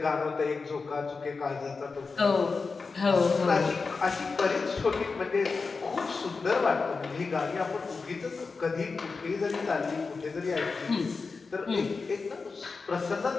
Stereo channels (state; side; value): quieter; right; 4.4 dB